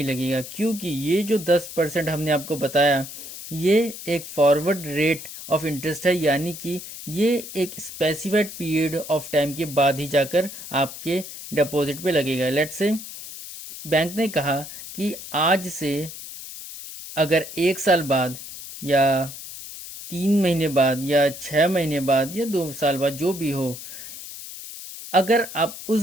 लगेगा, क्योंकि ये जो 10% हमने आपको बताया ये एक फॉरवर्ड रेट ऑफ इंटरेस्ट है, यानी कि ये एक स्पेसिफाइड पीरियड ऑफ टाइम के बाद ही जाकर आपके डिपॉजिट पे लगेगा। लेट से बैंक ने कहा कि आज से अगर 1 साल बाद या 3 महीने बाद या 6 महीने बाद या 2 साल बाद जो भी हो, अगर आप उस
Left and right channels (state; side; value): noise; left; hiss, 12 dB below the sound